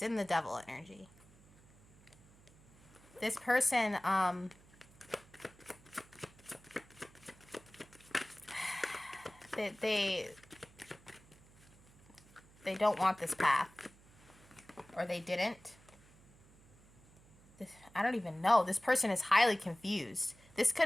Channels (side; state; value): right; noise; hum, 26 dB below the sound